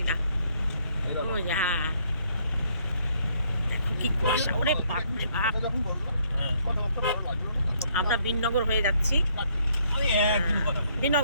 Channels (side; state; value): both; inverted; correlation -0.69